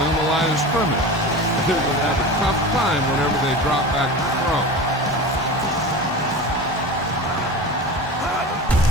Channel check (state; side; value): normal; both; correlation 0.31